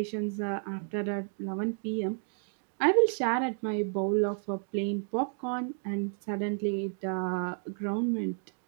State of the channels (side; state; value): left; silent; 57 dB below the other